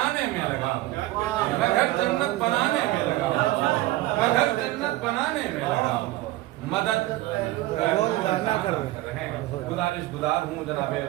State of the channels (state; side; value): quieter; left; 17.2 dB